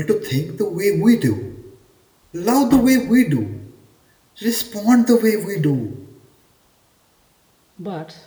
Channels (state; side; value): identical; both; correlation 1.00